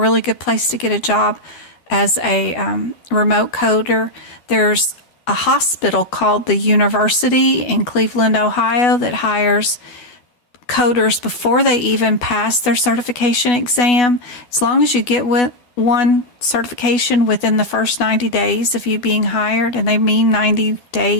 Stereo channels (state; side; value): late; right; 12 ms